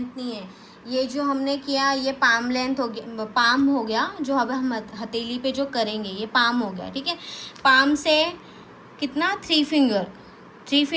नहीं है। ये जो हमने किया ये पाम लेंथ हो गया, पाम हो गया। जो अब हम हथेली पे जो करेंगे ये पाम हो गया। ठीक है, पाम से कितना 3 फिंगर, 3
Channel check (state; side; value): identical; both; correlation 1.00